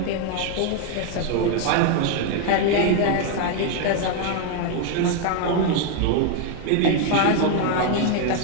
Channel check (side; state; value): both; different; correlation 0.00